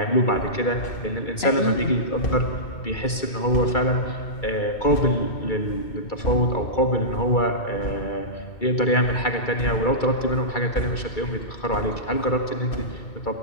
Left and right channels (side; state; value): right; late; 2.3 ms